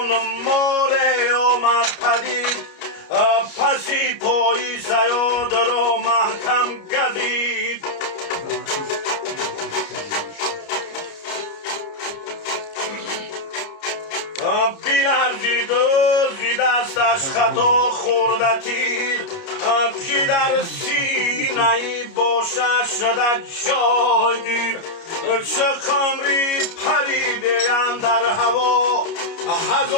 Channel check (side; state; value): right; late; 29 ms